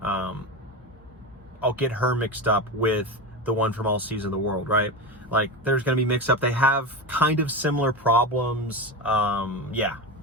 I'll get her mixed up with the one from All Seas of the World, right? Like, there's going to be mixed up. They have kind of similar problems. Yeah,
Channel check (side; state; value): both; normal; correlation 0.21